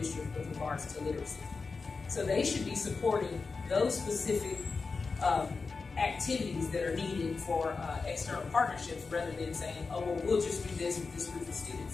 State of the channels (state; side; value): quieter; right; 4.4 dB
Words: with regards to literacy. So they should be supporting those specific activities that are needed for external partnerships rather than saying, oh, well, we'll just do this with this group of